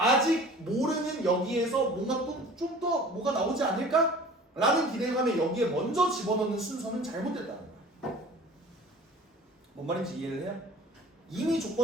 모르는 여기에서 뭔가 또 좀 더 뭐가 나오지 않을까? 라는 기대감에 여기에 먼저 집어넣는 순서는 잘못됐다는 거야. 뭔 말인지 이해를 해요? 이미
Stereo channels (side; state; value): both; normal; correlation 0.44